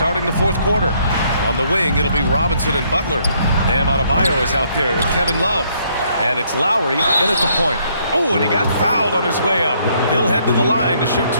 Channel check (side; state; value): both; inverted; correlation -0.68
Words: the fourth quarter. On the wing, it'll be Robinson and Butler. Bam Adebayo is out there with Kevin Love. And it's Lowry in at the point. Oh, and he got fouled on his way up. He'll head to the line to shoot